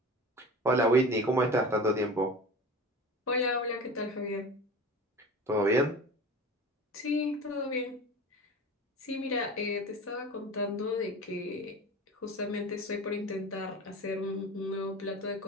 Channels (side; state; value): both; normal; correlation 0.35